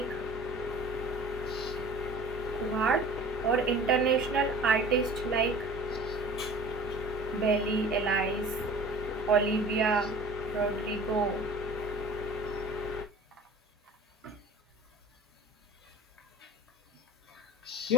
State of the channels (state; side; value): normal; both; correlation 0.42